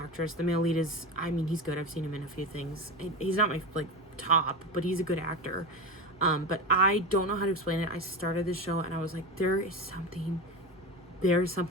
The male lead is, he's good. I've seen him in a few things. He's not my, like, top, but he's a good actor. But I don't know how to explain it. I started this show and I was like, there's something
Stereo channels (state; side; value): normal; both; correlation 0.22